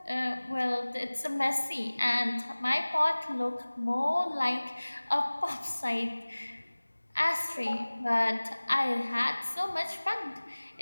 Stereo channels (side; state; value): both; inverted; correlation -1.00